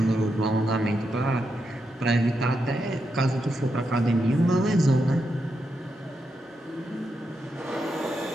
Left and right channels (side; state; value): both; normal; correlation 0.84